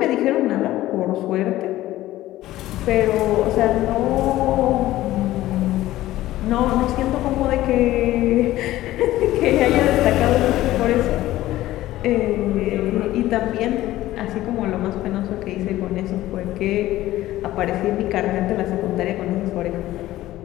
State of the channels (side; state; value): right; quieter; 15.5 dB